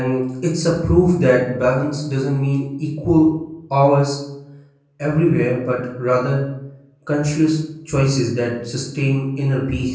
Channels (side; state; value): both; identical; correlation 1.00